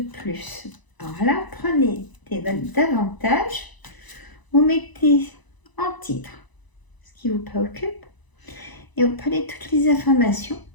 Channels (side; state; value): right; late; 1.0 ms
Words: Alors là, prenez des notes davantage, vous mettez en titre ce qui vous préoccupe et vous prenez toutes les informations